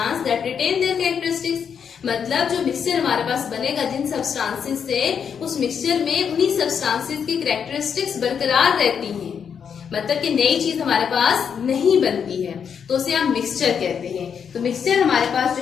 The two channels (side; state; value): right; quieter; 7.2 dB